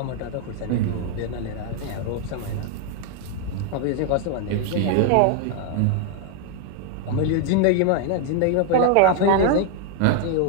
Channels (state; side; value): different; both; correlation 0.00